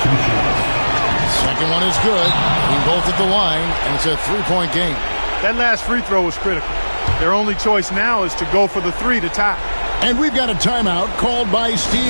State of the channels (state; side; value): inverted; both; correlation -1.00